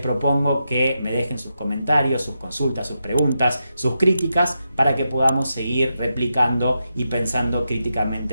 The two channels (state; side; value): inverted; both; correlation -0.86